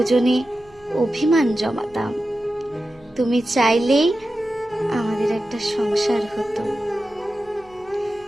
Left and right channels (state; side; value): noise; right; hum, 28 dB below the sound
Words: অভিমান জমাতাম। তুমি চাইলেই আমাদের একটা সংসার হতো,